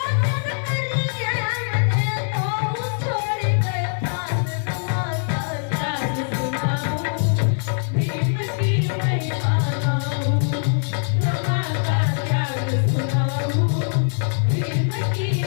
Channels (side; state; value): right; silent; digital silence